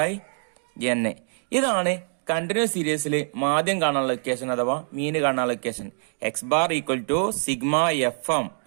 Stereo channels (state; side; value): silent; left; 56 dB below the other